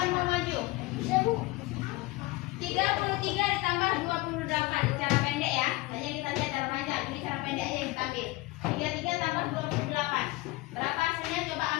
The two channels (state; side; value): quieter; right; 20.3 dB